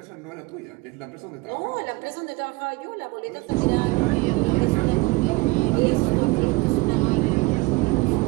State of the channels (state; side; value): quieter; left; 23.7 dB